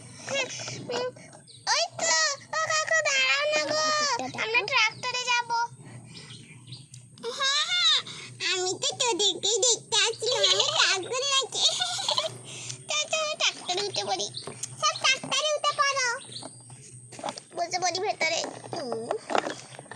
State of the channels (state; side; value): identical; both; correlation 1.00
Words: ওই তো, ও কাকু দাঁড়াও না গো, আমরা ট্রাক্টরে যাব। হ্যাঁ হ্যাঁ, আমি তো তোদেরকেই দেখতে আসছিলাম, আমি ট্রাক্টর নাকি। ট্রাক্টরে উঠে পড়ি, সব ট্রাক্টরে উঠে পড়ো, বসে পড়ি ভেতরে।